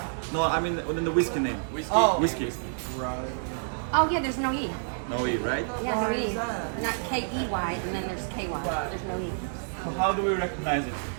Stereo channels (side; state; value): left; silent; digital silence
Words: No, I mean within the whiskey name. Whiskey. Whiskey. Oh yeah, there's no E. No E, right? Yeah, no E. Not K-E-Y, and then there's K-Y. There's no E. So how do we recognize it?